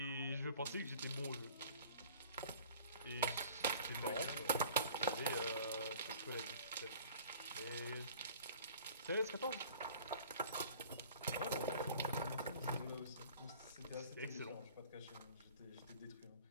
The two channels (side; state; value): both; inverted; correlation -0.47